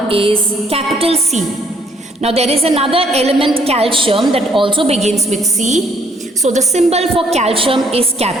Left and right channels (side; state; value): both; normal; correlation 0.65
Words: is capital C. Now there is another element, calcium, that also begins with C. So the symbol for calcium is